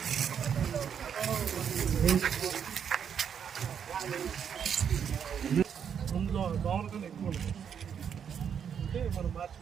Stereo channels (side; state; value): left; quieter; 7.8 dB